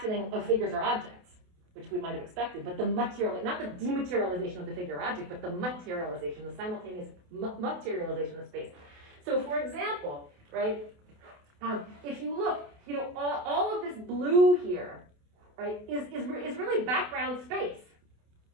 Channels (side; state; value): left; late; 28 ms